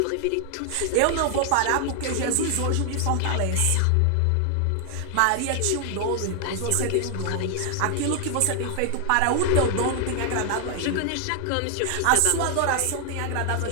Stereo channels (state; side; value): different; both; correlation 0.00